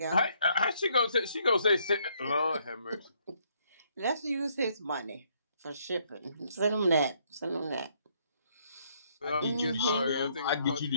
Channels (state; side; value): inverted; both; correlation -0.70